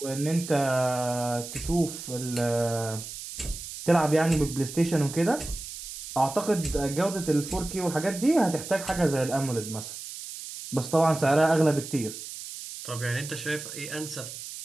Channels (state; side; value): noise; right; hiss, 10 dB below the sound